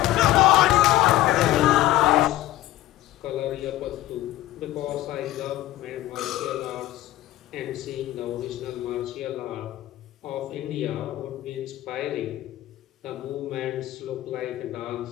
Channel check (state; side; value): quieter; right; 15.4 dB